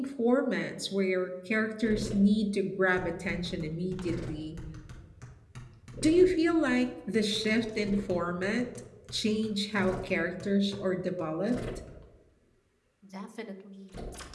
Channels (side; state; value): both; identical; correlation 1.00